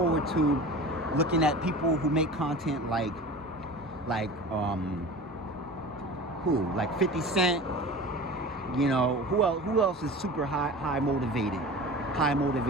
to looking at people who make content like 50 Cent, who else is super high motivated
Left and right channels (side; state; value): both; normal; correlation 0.36